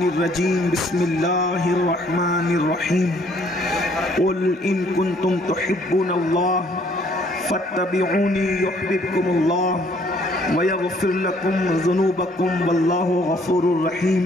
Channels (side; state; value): both; normal; correlation 0.62